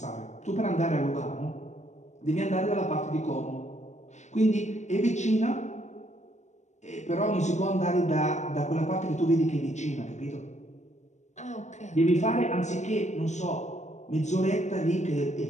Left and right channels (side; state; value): right; late; 0.34 ms